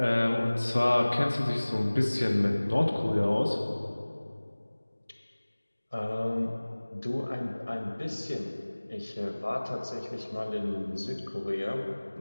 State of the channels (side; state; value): both; inverted; correlation -1.00